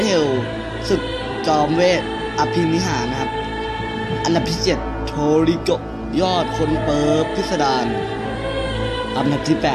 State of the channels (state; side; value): identical; both; correlation 1.00